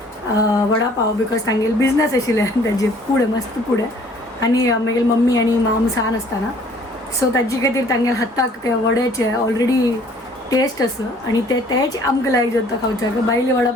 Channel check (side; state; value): both; normal; correlation 0.57